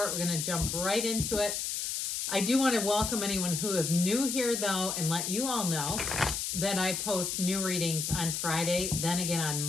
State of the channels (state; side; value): noise; left; hiss, 2 dB below the sound